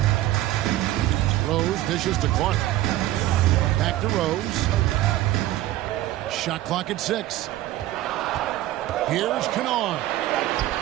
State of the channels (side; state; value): left; quieter; 15.1 dB